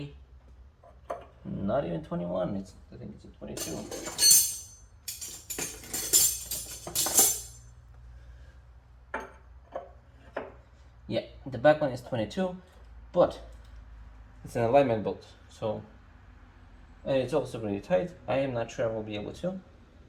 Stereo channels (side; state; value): both; identical; correlation 1.00